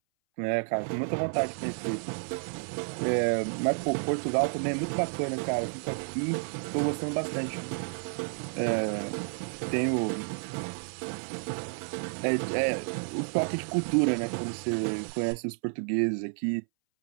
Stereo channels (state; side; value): silent; left; 58 dB below the other